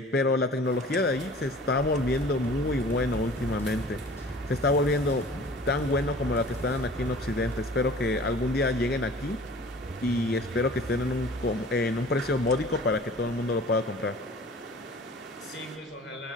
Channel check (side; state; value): both; normal; correlation 0.46